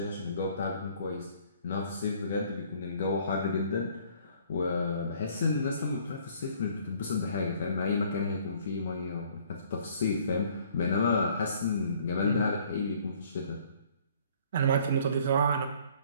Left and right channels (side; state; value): both; inverted; correlation -0.58